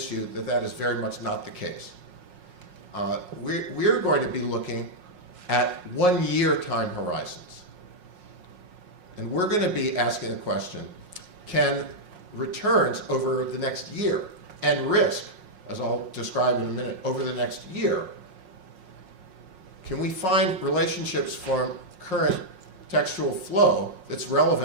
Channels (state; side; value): late; left; 5.5 ms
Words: you that that is very much not the case. We're going to be looking at 1-year time horizons. And we're going to be asking the question, can returns over the next year and risk, as I'll describe in a minute, over the next year, can we find relationships from current textual flow that's